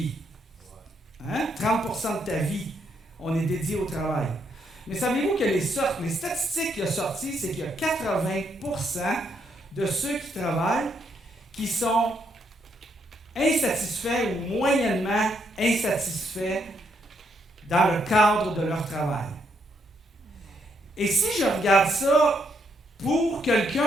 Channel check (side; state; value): both; normal; correlation 0.75